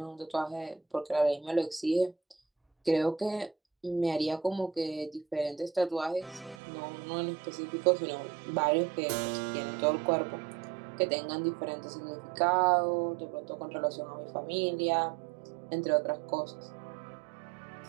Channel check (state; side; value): drops out; left; at 6.6 s